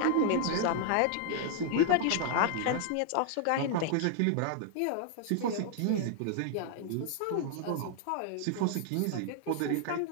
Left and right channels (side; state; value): both; different; correlation 0.00